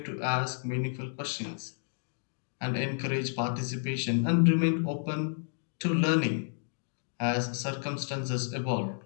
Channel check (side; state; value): right; silent; digital silence